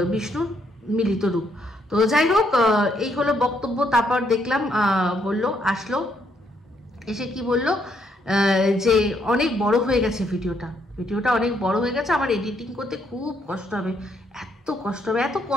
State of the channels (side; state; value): both; normal; correlation 0.73